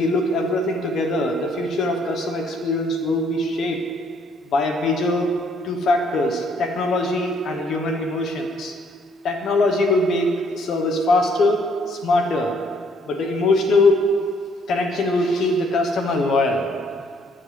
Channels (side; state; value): both; normal; correlation 0.65